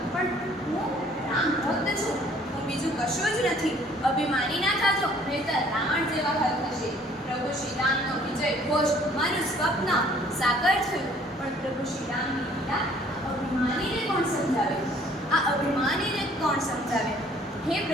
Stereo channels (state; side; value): normal; both; correlation 0.58